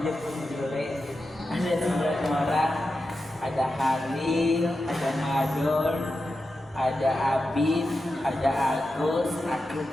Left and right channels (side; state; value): both; normal; correlation 0.90